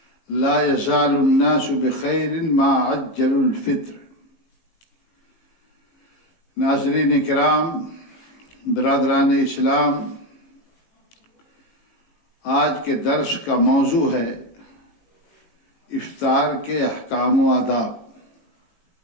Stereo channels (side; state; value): right; late; 18 ms